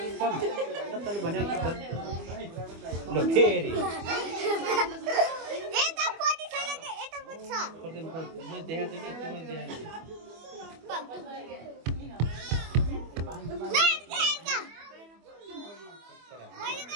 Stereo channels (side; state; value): left; late; 25 ms